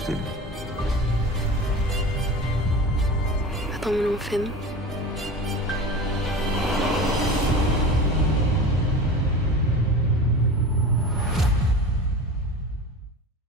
Hvad drømmer du om at finde?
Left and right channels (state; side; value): normal; both; correlation 0.33